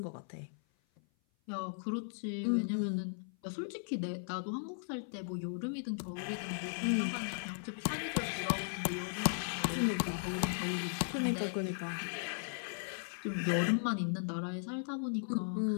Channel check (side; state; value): right; silent; 53 dB below the other